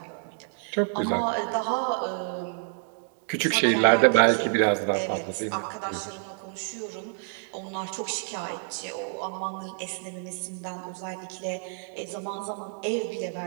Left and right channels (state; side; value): silent; left; 59 dB below the other